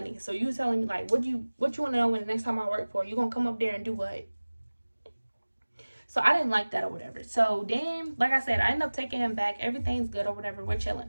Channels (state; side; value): inverted; both; correlation -1.00